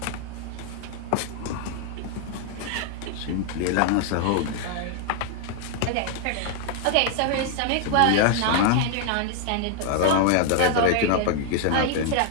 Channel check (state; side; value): different; both; correlation 0.00